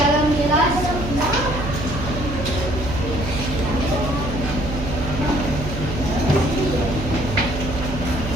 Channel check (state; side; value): noise; right; hum, 6 dB below the sound